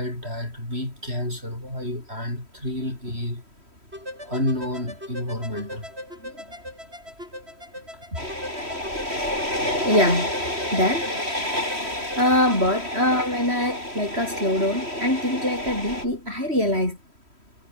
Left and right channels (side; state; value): left; late; 3.1 ms